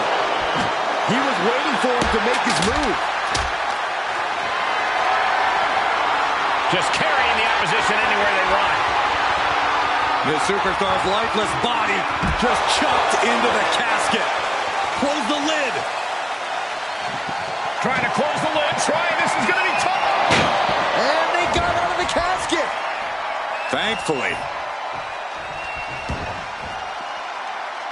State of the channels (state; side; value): identical; both; correlation 1.00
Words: He was waiting for him to make his move. Just carrying the opposition anywhere they run. the superstar's lifeless body just chucked into the casket. Close the lid. Trying to close the lid. This is going to be tough. And they got out of the casket. Thankfully.